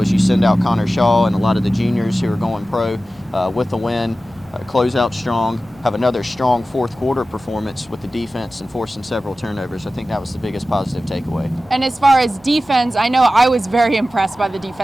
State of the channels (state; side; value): noise; left; rumble, 28 dB below the sound